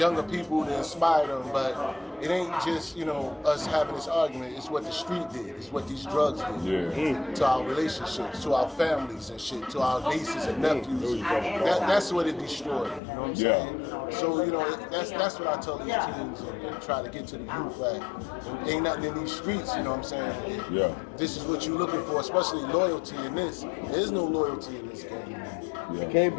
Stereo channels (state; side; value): drops out; right; at 13.0 s